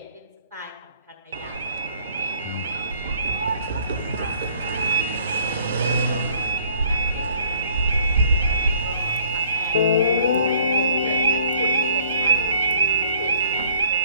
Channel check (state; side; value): inverted; both; correlation -0.60